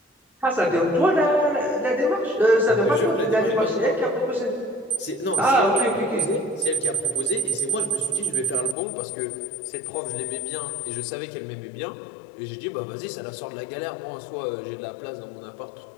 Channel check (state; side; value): drops out; right; at 8.8 s